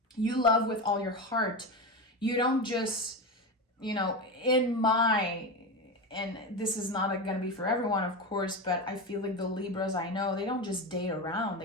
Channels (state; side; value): normal; both; correlation 0.19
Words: You love with all your heart. You don't just, and this is not going to be for everyone, of course, but I feel like the Libras I know, they don't just date around.